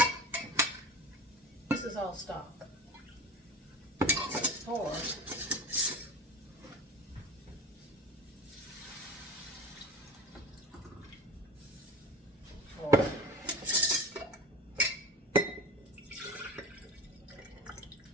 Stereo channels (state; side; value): normal; both; correlation 0.33